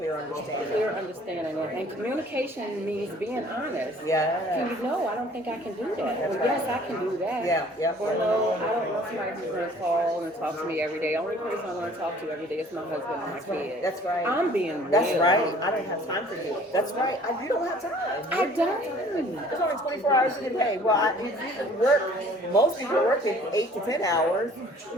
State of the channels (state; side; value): normal; both; correlation 0.53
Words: understanding. Clear understanding. And communication means being honest. Yeah. Can you know, I don't think I can do that. Or yes, I can do that. Yeah. Or no, I don't want somebody who's going to call and talk to me every day. Only person I want to talk to every day is my husband and my kid. That's right. I'm being real. That's right. I don't have time for you. That's right. You don't have time. I don't. There's only 24 hours in a day. Well, you work. Most people work 8 to 10 hours.